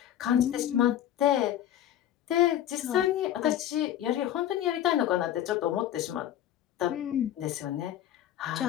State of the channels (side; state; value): right; quieter; 11.6 dB